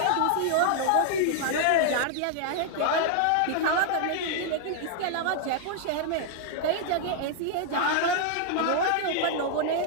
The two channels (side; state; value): both; different; correlation 0.00